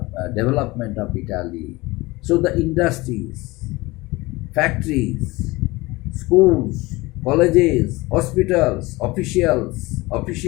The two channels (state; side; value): quieter; right; 21.7 dB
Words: development of Italy. So the industries, factories, schools, colleges, hospitals,